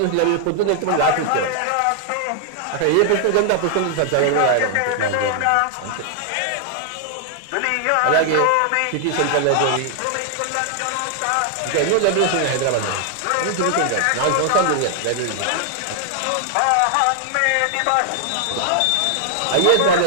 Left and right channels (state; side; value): different; both; correlation 0.00